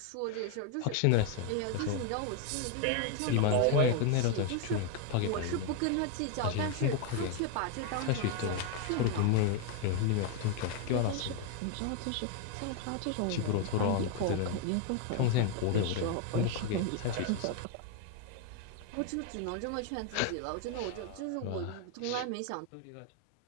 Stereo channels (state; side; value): different; both; correlation 0.01